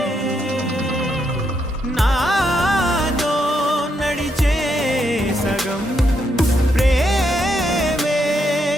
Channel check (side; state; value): both; normal; correlation 0.78